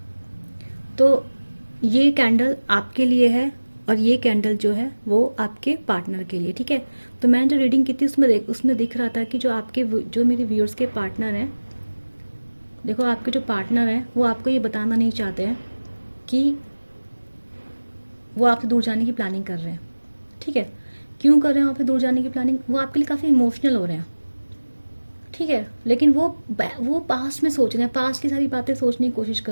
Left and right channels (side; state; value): both; inverted; correlation -1.00